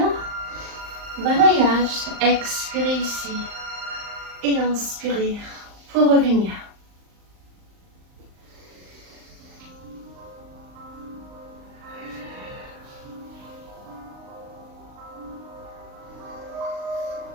Balayage. Expirez ici. Et inspirez pour revenir.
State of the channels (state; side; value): late; left; 39 ms